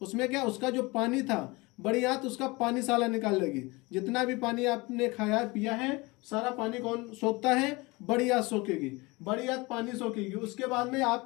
उसमें क्या, उसका जो पानी था, बड़ी आंत उसका पानी साला निकाल लेगी। जितना भी पानी आपने खाया पिया है, सारा पानी कौन सोखता है, बड़ी आंत सोखेगी। बड़ी आंत पानी सोखेगी। उसके बाद में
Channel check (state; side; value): quieter; right; 24.2 dB